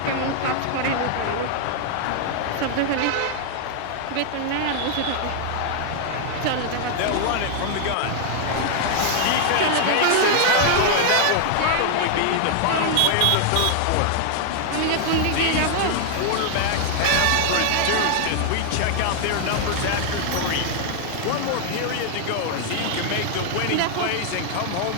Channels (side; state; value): both; different; correlation 0.00